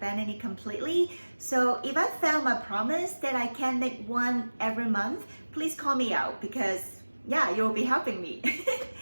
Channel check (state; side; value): inverted; both; correlation -1.00